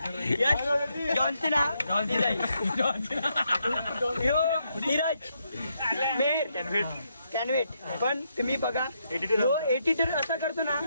जॉन्सिना नीरज मेहर कॅनवेट. पण तुम्ही बघा जो एडिटर असा करतो ना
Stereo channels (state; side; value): inverted; both; correlation -0.78